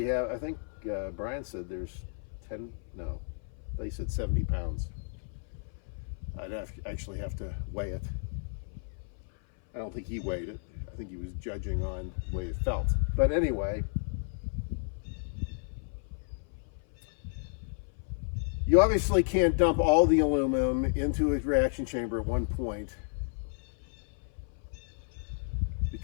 have, I think Brian said there's 10, no, they said 70 pounds. I'd actually have to weigh it. I don't think he weighed it. I think he was judging on the way it felt. But anyway, you obviously can't dump all the aluminum into a reaction chamber at one point,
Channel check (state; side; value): silent; right; 56 dB below the other